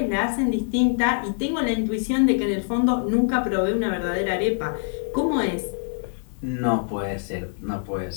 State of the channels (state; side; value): silent; right; 62 dB below the other